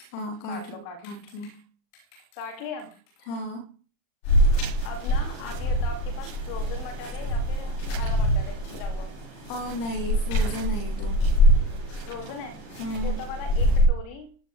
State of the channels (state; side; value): late; right; 39 ms